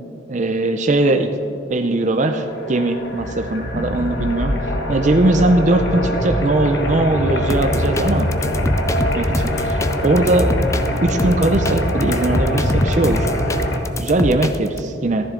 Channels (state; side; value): normal; both; correlation 0.59